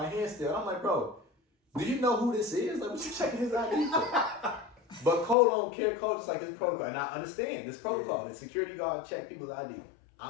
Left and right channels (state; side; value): drops out; right; at 5.4 s